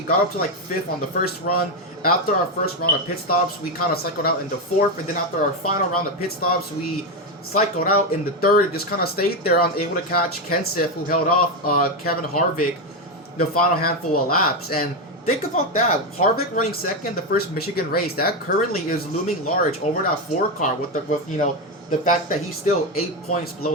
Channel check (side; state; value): both; normal; correlation 0.09